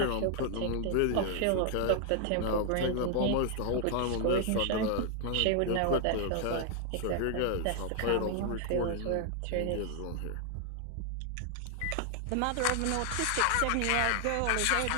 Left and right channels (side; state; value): both; different; correlation 0.00